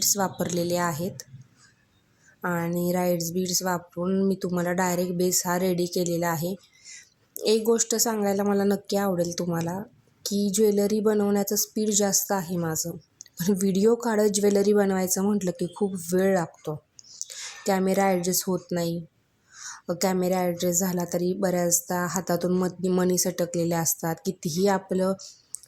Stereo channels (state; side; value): identical; both; correlation 1.00